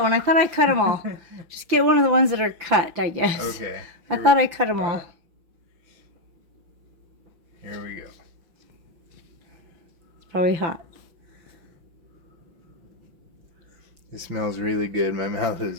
one. I thought I cut them all. Just get one of the ones that are cut, I guess. Okay. I thought I cut them all. Here we go. It's probably hot. It smells really good. My mouth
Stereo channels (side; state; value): left; late; 5.9 ms